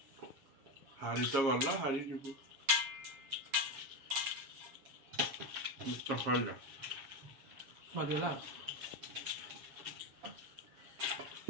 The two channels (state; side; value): late; left; 7.2 ms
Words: ହାରି ତ ଗଲା ହାରି ଯିବୁ ସରିଲା ସରିଗଲା